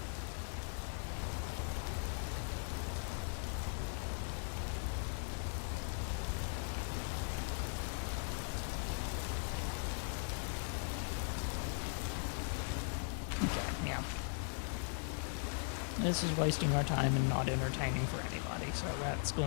Okay, yeah. This is wasting our time and not entertaining for anybody, so that's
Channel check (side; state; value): right; silent; 52 dB below the other